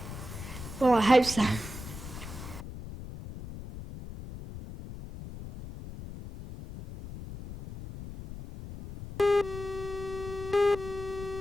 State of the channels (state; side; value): noise; left; rumble, 11 dB below the sound